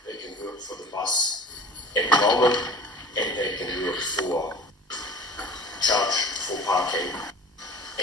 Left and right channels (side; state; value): both; normal; correlation 0.42